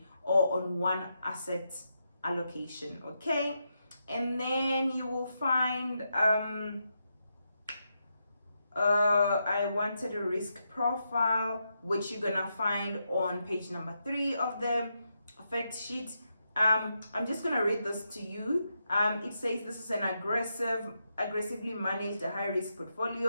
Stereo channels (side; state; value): both; inverted; correlation -0.84